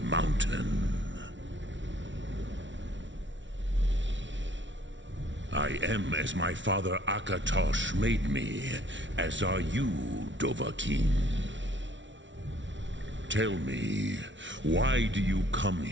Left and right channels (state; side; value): late; left; 0.55 ms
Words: mountain? I am as my father Akatosh made me, as are you, Dovahkiin. Tell me, why do you come